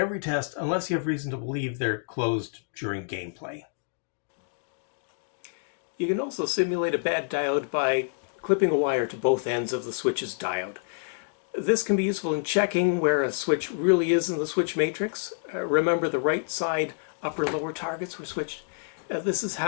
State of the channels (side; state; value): right; silent; digital silence